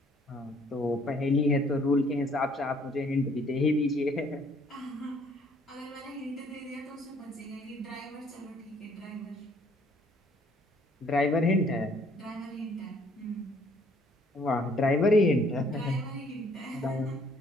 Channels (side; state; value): both; normal; correlation 0.62